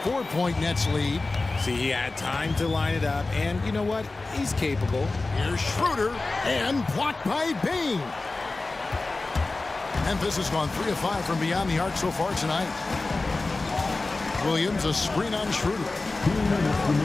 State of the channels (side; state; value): right; quieter; 3.4 dB